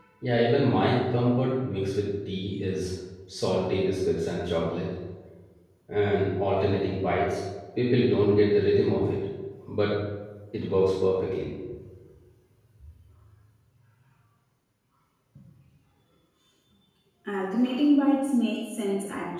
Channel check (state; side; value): identical; both; correlation 1.00